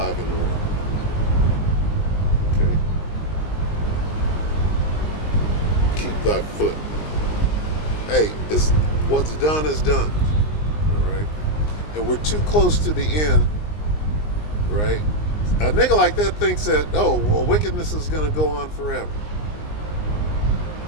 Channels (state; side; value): late; right; 19 ms